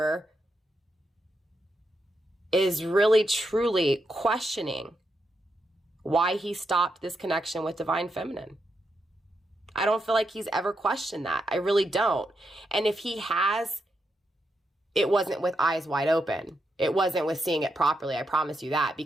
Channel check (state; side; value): normal; both; correlation 0.83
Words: is really truly questioning why he stopped this connection with Divine Feminine. I don't feel like he's ever questioned that. I really don't. And if he has, it wasn't with eyes wide open. It wasn't with seeing it properly. I promise you that,